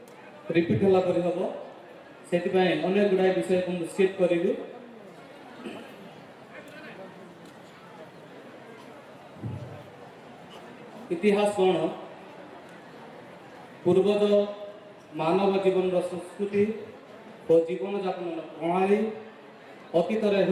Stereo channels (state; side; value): identical; both; correlation 1.00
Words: ରିପିଟ୍ ହେଲା ପରି ହେବ। ସେଥିପାଇଁ ଅନେକ ଗୁଡ଼ାଏ ବିଷୟକୁ ମୁଁ ସ୍କିପ୍ କରିବି। ଇତିହାସ କ'ଣ? ପୂର୍ବଜ ମାନବ ଜୀବନର ସଂସ୍କୃତି ଓ ଜୀବନଯାପନର ପ୍ରଣାଳୀ, ଅତୀତରେ